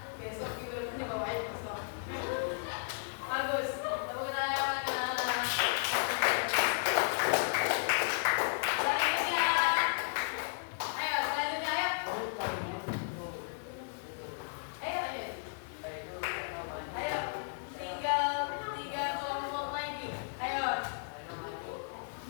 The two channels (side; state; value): right; silent; digital silence